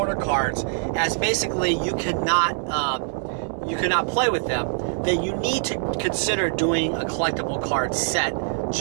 cards as basically you cannot play with them, then you need to consider doing a collectible card set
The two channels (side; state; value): left; silent; 63 dB below the other